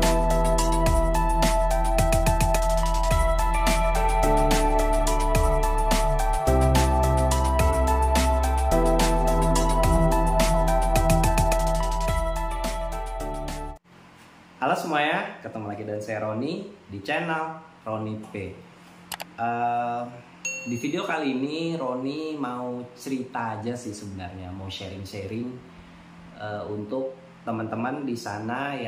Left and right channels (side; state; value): both; identical; correlation 1.00